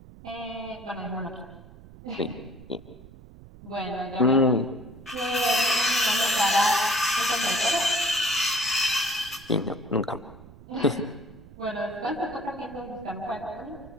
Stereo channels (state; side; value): noise; right; rumble, 19 dB below the sound